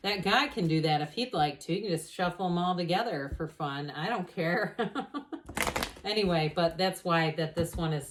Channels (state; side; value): identical; both; correlation 1.00